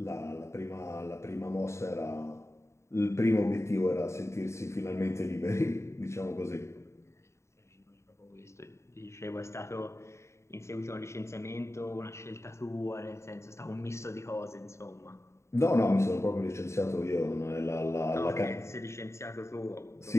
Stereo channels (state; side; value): late; right; 0.14 ms